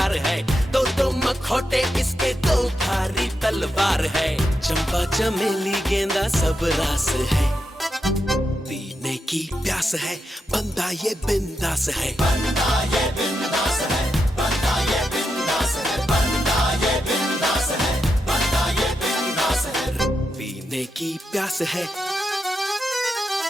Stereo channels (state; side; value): normal; both; correlation 0.86